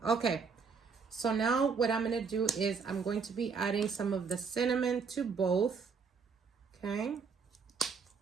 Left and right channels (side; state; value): left; quieter; 5.4 dB